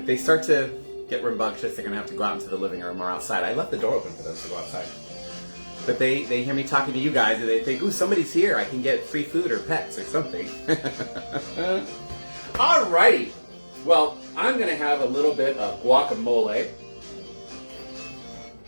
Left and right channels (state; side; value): inverted; both; correlation -1.00